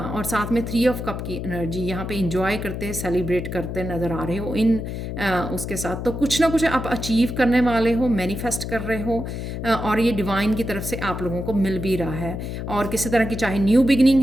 साथ में 3 ऑफ कप की एनर्जी यहाँ पे इंजॉय करते, सेलिब्रेट करते नज़र आ रहे हो इन उसके साथ। तो कुछ ना कुछ आप अचीव करने वाले हो, मैनिफेस्ट कर रहे हो, और ये डिवाइन की तरफ से आप लोगों को मिल भी रहा है। और किसी तरह की, चाहे न्यू बिगनिंग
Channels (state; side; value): noise; left; hum, 5 dB below the sound